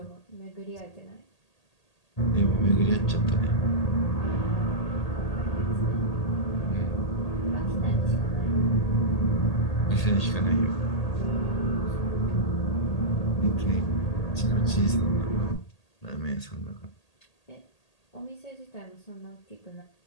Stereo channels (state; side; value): late; right; 1.8 ms